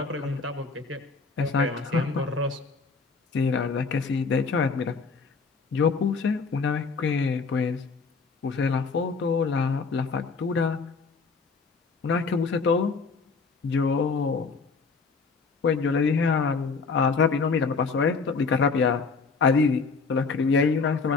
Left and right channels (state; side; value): quieter; right; 4.6 dB